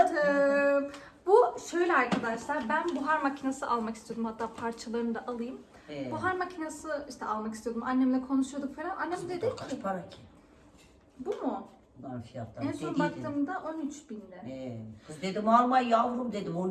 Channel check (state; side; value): identical; both; correlation 1.00